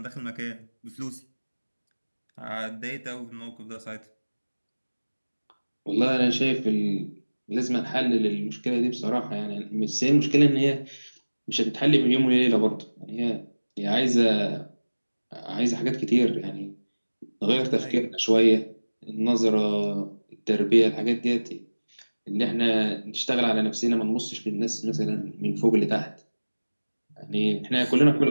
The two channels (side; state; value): both; inverted; correlation -1.00